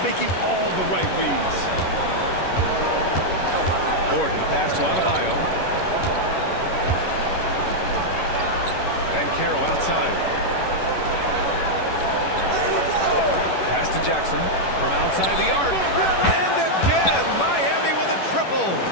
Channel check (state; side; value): late; right; 11 ms